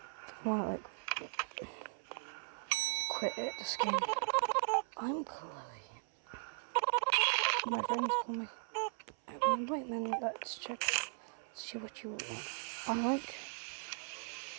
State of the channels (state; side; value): silent; left; 52 dB below the other